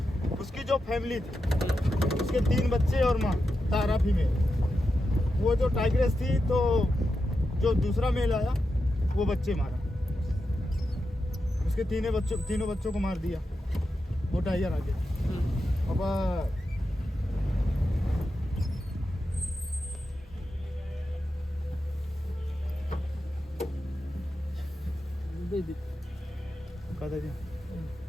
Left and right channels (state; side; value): normal; both; correlation 0.88